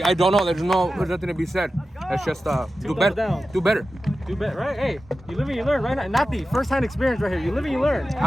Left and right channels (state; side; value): normal; both; correlation 0.93